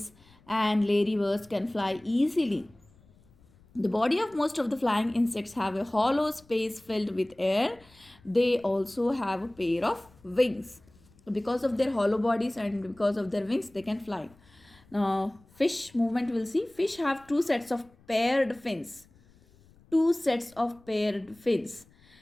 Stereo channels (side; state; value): left; noise; rumble, 29 dB below the sound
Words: and ladybirds can fly easily. The body of most of the flying insects have a hollow space filled with air. They also have a pair of wings. Because of their hollow bodies and because of their wings, they can fly. Now, fish movement, we'll see. Fish have two sets of paired fins. Two sets of paired fins.